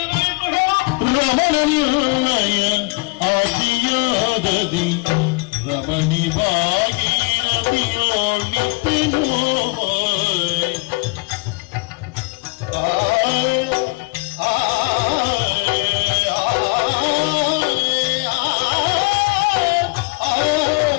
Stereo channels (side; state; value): right; quieter; 27.4 dB